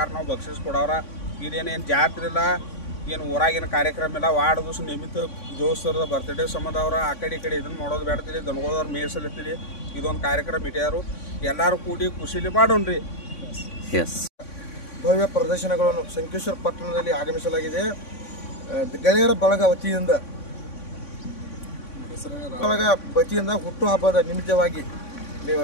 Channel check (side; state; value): right; late; 3.5 ms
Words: ನಾವು ಬಕ್ಷಿಸ್ ಕೊಡೋರ. ಇದೇನೇನು ಜಾತ್ರೆ ಇಲ್ಲ, ಏನು ಊರಾಗಿನ ಕಾರ್ಯಕ್ರಮ ಇಲ್ಲ. ವಾರ್ಡ್ ದಿವಸ ನಿಮಿತ್ತ ದೋಸ್ತರದ ಬರ್ತ್ಡೇ ಸಂಬಂಧ ಅವ್ರ ಆ ಕಡೆ ಈ ಕಡೆ ಇದನ್ನು ಮಾಡೋದು ಬೇಡ್ತೀರಿ. ದನಗಳವ್ರು ಮೇಸಲಿರ್ತೀರಿ. ಇದೊಂದು ಕಾರ್ಯಕ್ರಮ ಇಟ್ಟಾರು. ಎಲ್ಲರೂ ಕೂಡಿ ಖುಷಿಲಿ ಮಾಡೋಣ್ರಿ. ಭವ್ಯ ಪ್ರದರ್ಶನಗಳನ್ನು ಸಂಕೇಶ್ವರ ಪಟ್ಟಣದಲ್ಲಿ ಆಗಮಿಸಲಾಗಿದೆ. ಗೆಳೆಯರ ಬಳಗ ವತಿಯಿಂದ ಹುಟ್ಟುಹಬ್ಬದ ನಿಮಿತ್ತವಾಗಿ